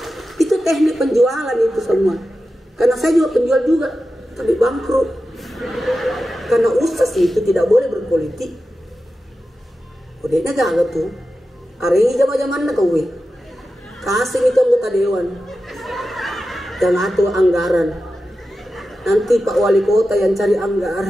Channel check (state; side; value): normal; both; correlation 0.92